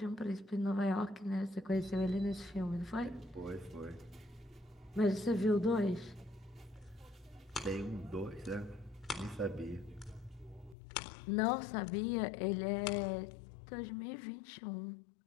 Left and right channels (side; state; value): right; drops out; at 10.8 s